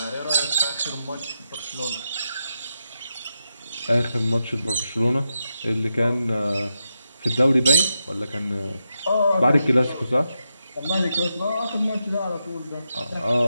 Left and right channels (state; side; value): inverted; both; correlation -0.86